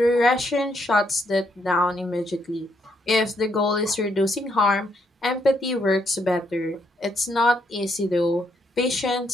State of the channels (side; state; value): both; normal; correlation 0.74